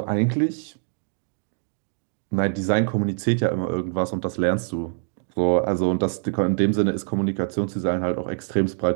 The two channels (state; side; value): silent; left; digital silence